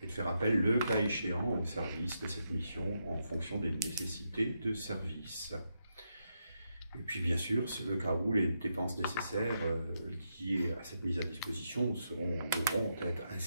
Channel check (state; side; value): inverted; both; correlation -0.82